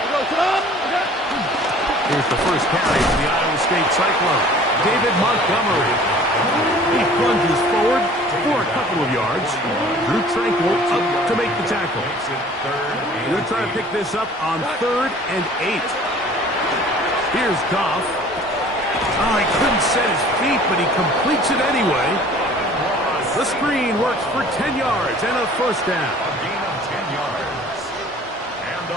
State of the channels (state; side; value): normal; both; correlation 0.49